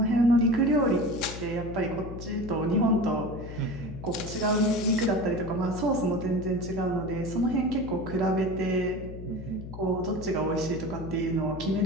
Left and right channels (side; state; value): left; noise; hum, 10 dB below the sound